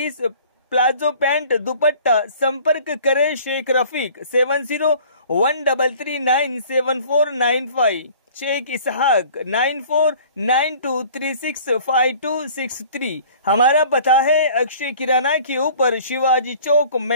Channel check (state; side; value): inverted; both; correlation -0.49